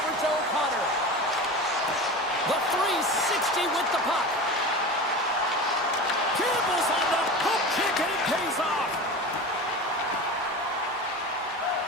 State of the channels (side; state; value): both; normal; correlation 0.30